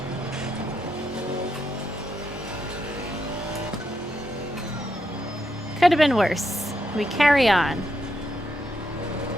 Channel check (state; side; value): normal; both; correlation 0.81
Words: Could have been worse. We carry on.